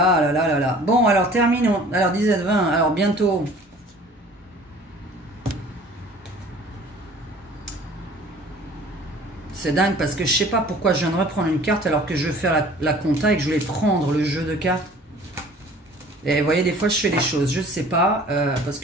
là là là là. Bon, alors terminons. Alors 17-20, alors bientôt. C'est dingue parce que je sais pas pourquoi je viens de reprendre une carte alors que je veux faire la compta et que je voulais prendre le jeu de cartes. Et vous voyez, des fois je fais des choses, je sais pas, parce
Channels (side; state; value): both; normal; correlation 0.49